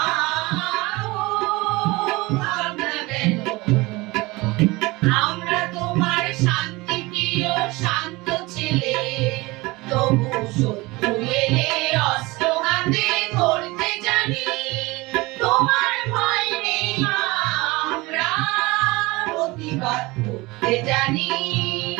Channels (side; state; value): left; quieter; 22.5 dB